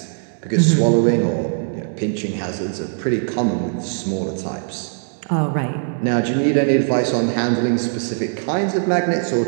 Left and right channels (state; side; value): silent; left; digital silence